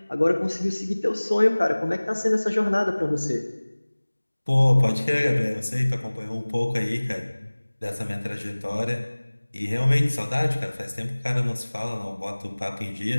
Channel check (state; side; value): inverted; both; correlation -1.00